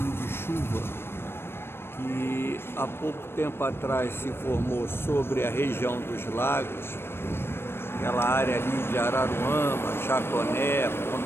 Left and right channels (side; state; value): right; late; 0.12 ms